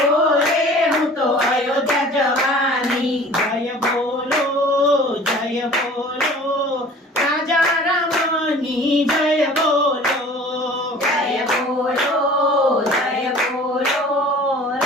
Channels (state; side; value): normal; both; correlation 0.46